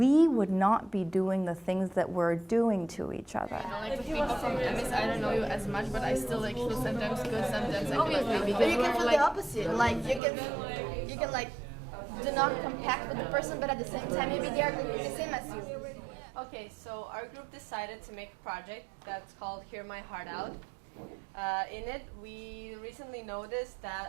would not be doing the things that we're doing to each other. Like with people from MS, I don't know you as much, but I still like feel sometimes good, sometimes I feel like maybe. But you can feel the opposite. Like you can like do not compact with the person, but at the same time maybe they are the same as you. Okay, so our group decided to make a project that's called Hear My Heart Out. In it, we recently noticed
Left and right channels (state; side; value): drops out; left; at 10.2 s